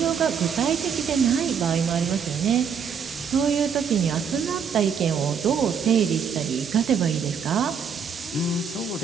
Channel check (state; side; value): quieter; left; 6.7 dB